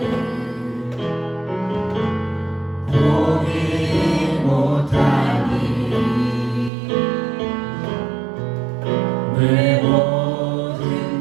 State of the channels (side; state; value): left; drops out; at 6.7 s